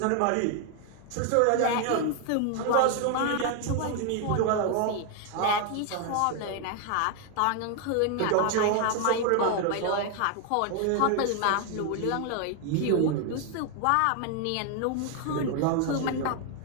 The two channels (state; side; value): different; both; correlation 0.00